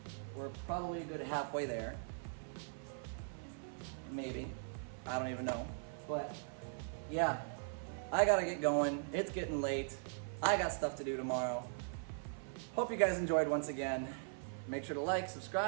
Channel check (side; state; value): left; silent; 51 dB below the other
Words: We're probably a good halfway there. Maybe. I don't even know. But, yeah. I gotta get going. It's getting late. I got stuff to do tomorrow. Hope you guys enjoyed once again. Make sure to like,